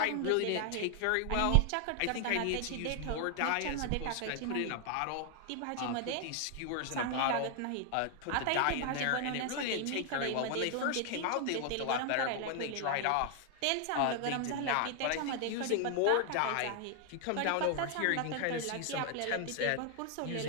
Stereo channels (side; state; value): both; different; correlation 0.00